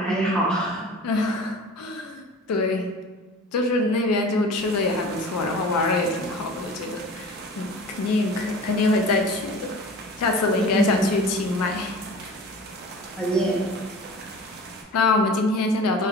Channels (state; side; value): normal; both; correlation 0.40